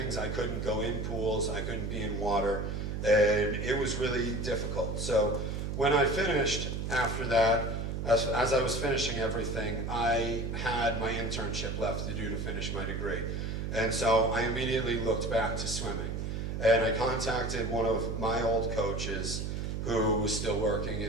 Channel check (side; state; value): right; noise; hum, 3 dB below the sound